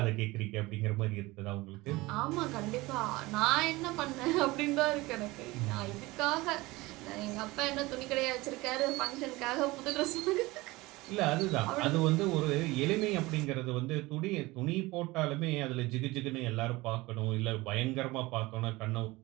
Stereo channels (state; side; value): quieter; left; 21.1 dB